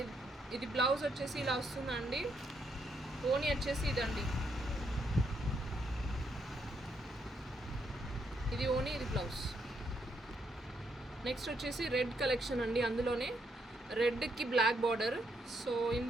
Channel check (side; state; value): both; normal; correlation 0.76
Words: ఇది బ్లౌజ్ వచ్చేసి ఇలా వస్తుందండి. ఓని వచ్చేసి ఇదండి, ఇది ఓని, ఇది బ్లౌజ్. నెక్స్ట్ వచ్చేసి రెడ్ కలెక్షన్ అండి, అందులోనే రెడ్కి బ్లాక్ బార్డర్. సో